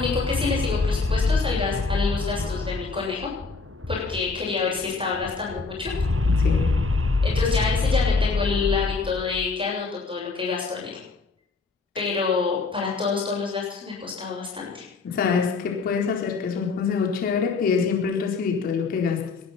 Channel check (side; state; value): right; quieter; 4.2 dB